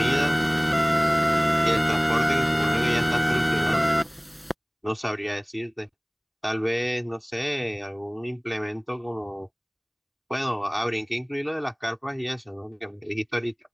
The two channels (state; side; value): identical; both; correlation 1.00